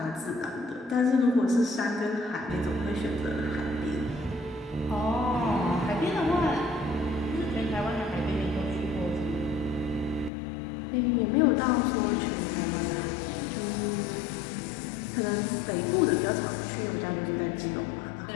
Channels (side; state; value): right; drops out; at 10.3 s